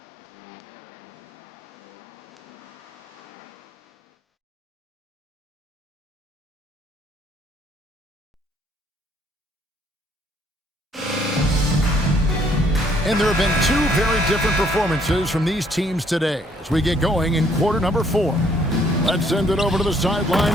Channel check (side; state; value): both; normal; correlation 0.65